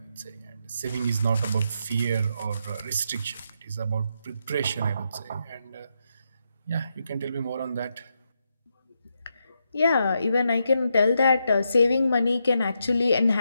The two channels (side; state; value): both; inverted; correlation -0.82